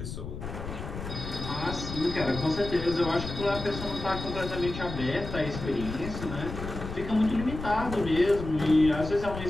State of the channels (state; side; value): noise; left; rumble, 8 dB below the sound